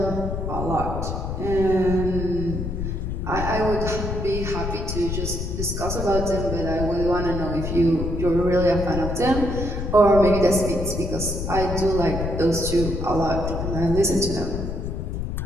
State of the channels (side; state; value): left; noise; rumble, 3 dB below the sound